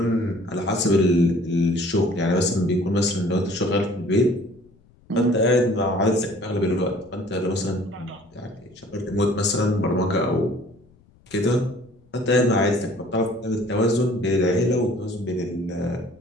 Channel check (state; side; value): noise; left; rumble, 30 dB below the sound